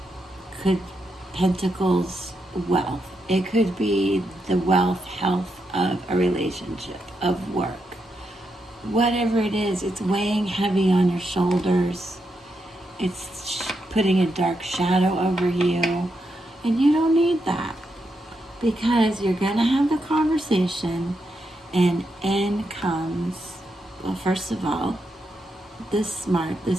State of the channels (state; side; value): normal; both; correlation 0.83